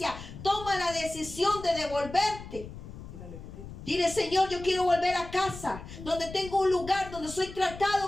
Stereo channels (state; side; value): noise; left; rumble, 13 dB below the sound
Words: toma la decisión de devolverte. Dile: Señor, yo quiero volver a casa, donde tengo un lugar donde soy